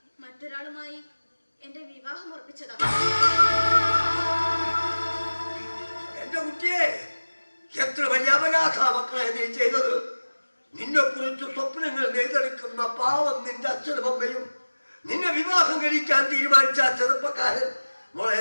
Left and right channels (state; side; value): inverted; both; correlation -1.00